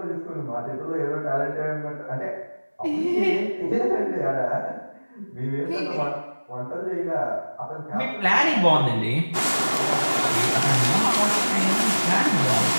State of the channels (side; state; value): both; inverted; correlation -1.00